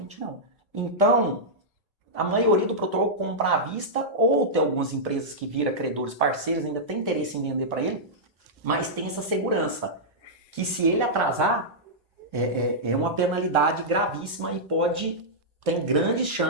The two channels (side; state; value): both; normal; correlation -0.10